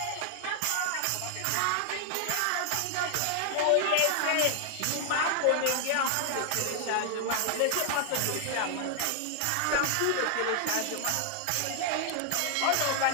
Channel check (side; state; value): both; different; correlation 0.00